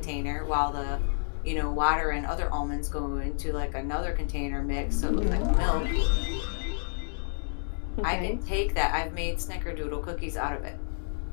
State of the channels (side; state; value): right; silent; digital silence